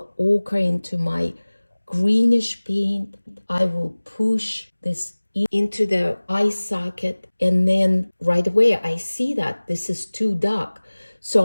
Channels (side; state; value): both; inverted; correlation -1.00